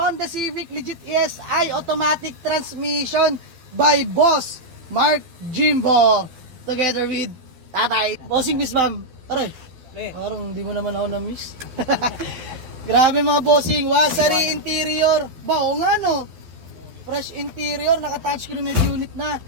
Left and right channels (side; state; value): left; late; 12 ms